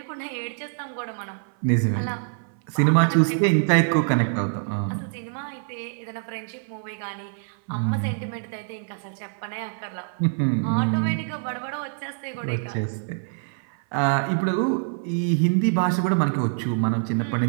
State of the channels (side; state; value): left; silent; 58 dB below the other